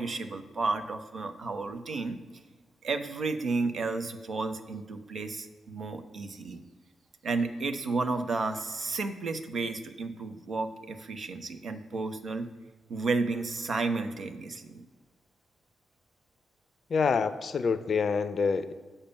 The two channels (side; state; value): both; normal; correlation 0.80